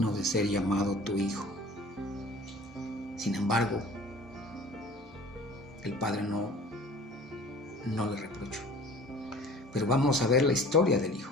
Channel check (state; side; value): normal; both; correlation 0.46